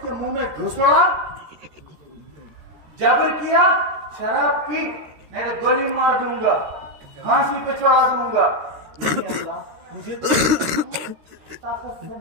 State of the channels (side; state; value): left; late; 13 ms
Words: کے منہ میں گھسڑا؟ جبر کیا، شراب پی، میں گولی مار دوں گا، پھانسی پہ چڑھا دوں گا. لیکن اللہ مجھے طاقت سے